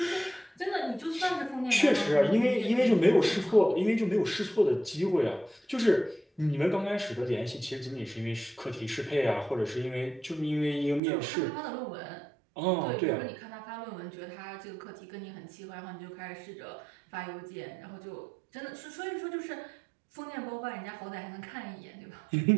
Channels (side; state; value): left; drops out; at 11.0 s